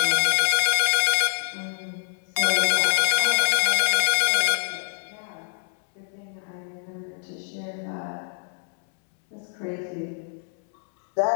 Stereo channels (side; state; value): right; silent; 62 dB below the other